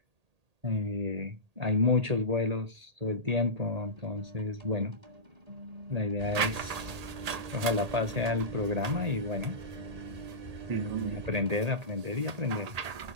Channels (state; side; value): late; left; 1.8 ms